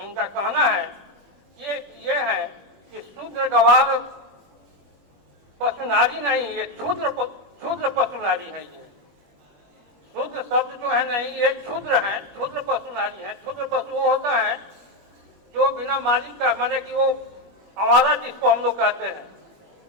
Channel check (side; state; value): left; late; 21 ms